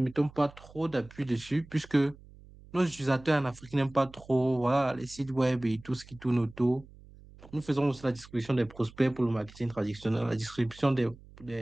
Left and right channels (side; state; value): right; noise; hum, 22 dB below the sound